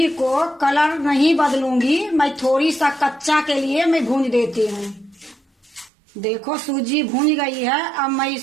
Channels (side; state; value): left; drops out; at 5.9 s